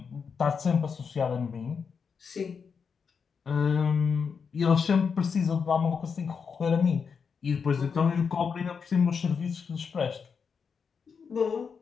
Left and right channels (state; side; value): quieter; right; 6.0 dB